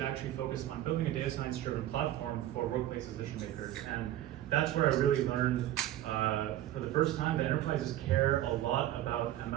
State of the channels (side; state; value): left; quieter; 13.3 dB